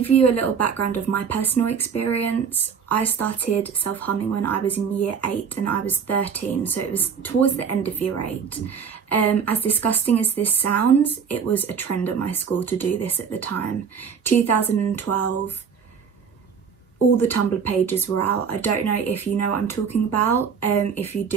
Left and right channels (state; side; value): quieter; left; 6.7 dB